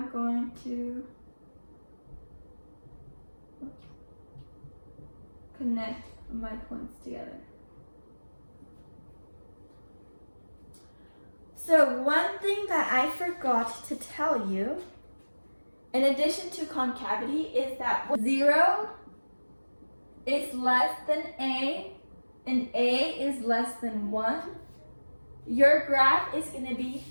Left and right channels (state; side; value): inverted; both; correlation -1.00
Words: going to connect my points together. So one thing that I forgot to tell you, in addition to concavity, is that 0 is less than a and a is less than 1, your graph is going to be